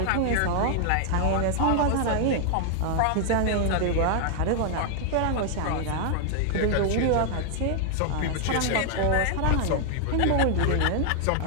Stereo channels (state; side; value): different; both; correlation 0.00